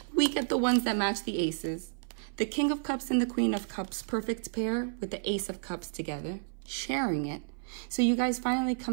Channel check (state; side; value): silent; left; 57 dB below the other